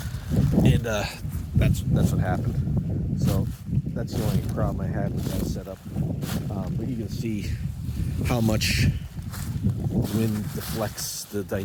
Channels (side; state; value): both; identical; correlation 1.00